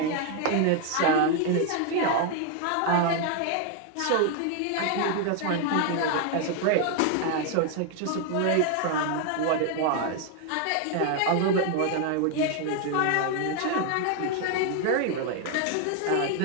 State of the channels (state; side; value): different; both; correlation 0.01